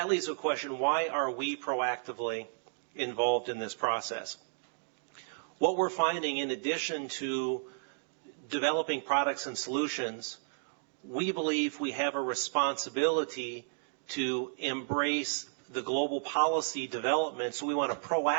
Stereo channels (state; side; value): silent; left; digital silence